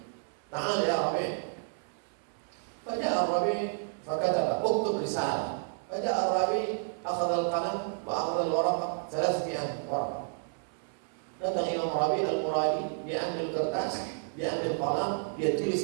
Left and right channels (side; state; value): left; silent; 57 dB below the other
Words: Ta'al ya Rabi'. Faja'a Rabi' fakataba uktub risalah. Faja'a Rabi' akhadha al-qalam wa akhadha al-waraq 300 waraq. Datang Imam Rabi' al-Muradi, dia ambil kertas, dia ambil qalam, dia